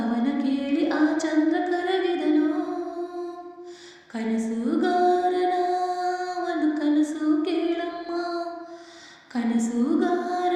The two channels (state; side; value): identical; both; correlation 1.00